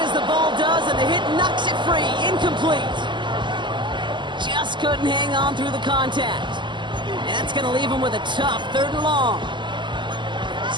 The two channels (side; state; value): left; late; 0.22 ms